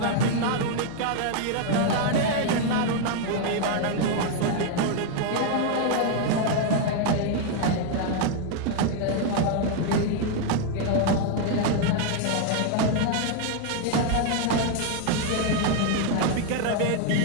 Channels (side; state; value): both; different; correlation 0.00